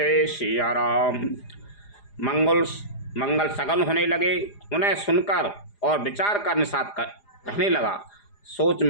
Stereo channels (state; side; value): late; right; 4.9 ms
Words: सिया राम। मंगल सगन होने लगे। उन्हें सुनकर और विचार कर निषाद कहने लगा, सोच